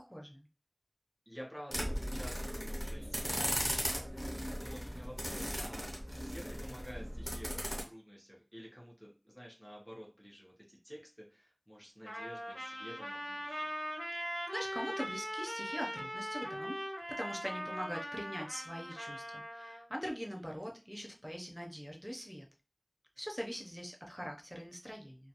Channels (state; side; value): identical; both; correlation 1.00